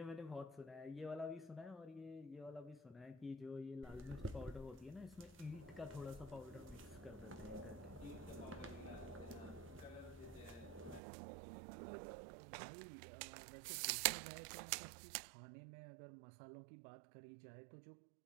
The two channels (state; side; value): drops out; left; at 11.0 s